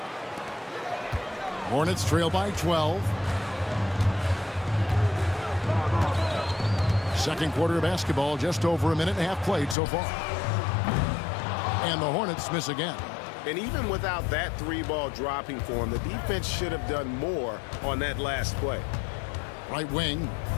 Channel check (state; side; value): drops out; right; at 9.8 s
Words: Hornets trail by 12. Second quarter of basketball, just over a minute and a half played so far. And the Hornets miss again. And even without that 3-ball dropping for him, the defense should have done more on that last play. Right wing.